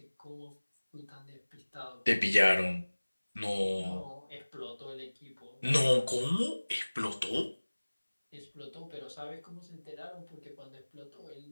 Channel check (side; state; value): both; inverted; correlation -1.00